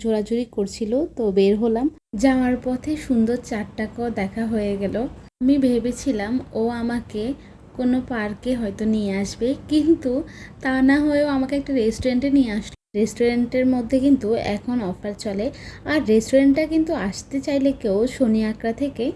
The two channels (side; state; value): both; identical; correlation 1.00